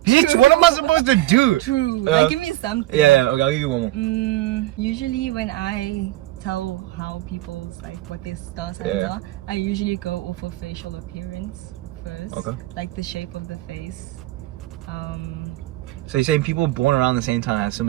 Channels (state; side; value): quieter; left; 16.8 dB